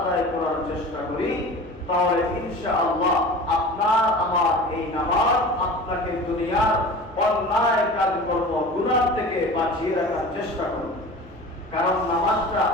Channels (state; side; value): noise; left; hum, 25 dB below the sound